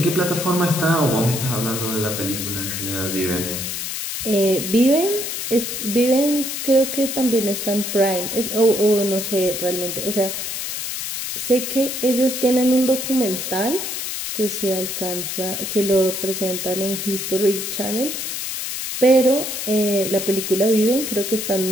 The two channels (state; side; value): noise; left; hiss, 4 dB below the sound